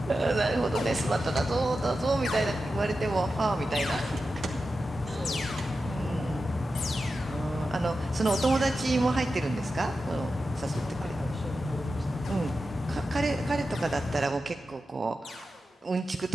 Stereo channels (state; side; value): normal; both; correlation 0.91